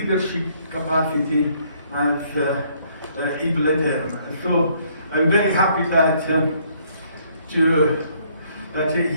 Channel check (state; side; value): inverted; both; correlation -0.66